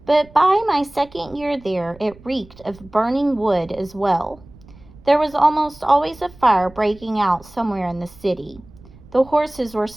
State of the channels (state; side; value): noise; right; rumble, 23 dB below the sound